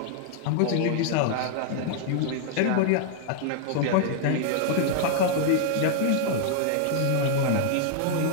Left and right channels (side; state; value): both; different; correlation -0.01